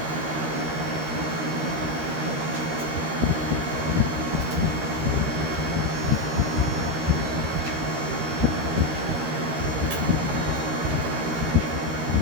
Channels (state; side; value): late; left; 13 ms